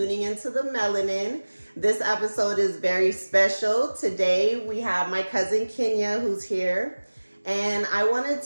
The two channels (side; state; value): both; inverted; correlation -1.00